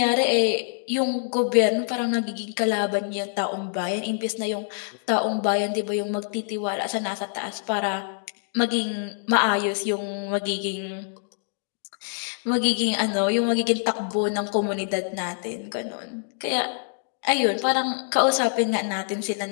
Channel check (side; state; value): right; silent; digital silence